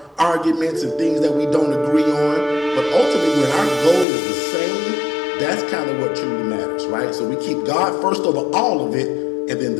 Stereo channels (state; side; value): drops out; right; at 4.0 s